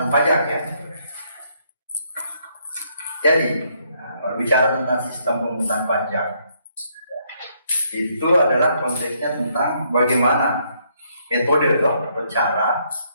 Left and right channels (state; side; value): inverted; both; correlation -0.72